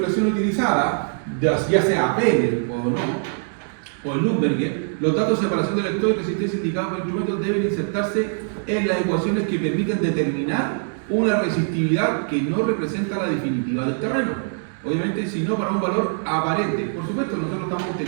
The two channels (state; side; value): silent; left; digital silence